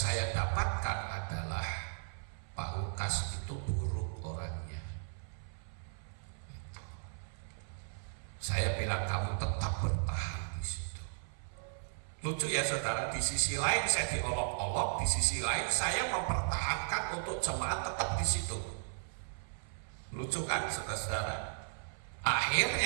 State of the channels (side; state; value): left; silent; 54 dB below the other